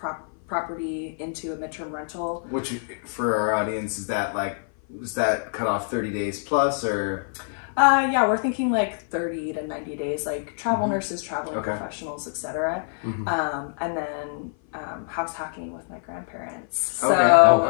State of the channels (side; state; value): right; silent; 56 dB below the other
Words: property into a midterm rental. Which, for our audience, is that cut off 30 days plus, or? Yeah, we're thinking like 30 to 90 days, like travel nurses, traveling professionals, etc. And then house hacking with my grandparents.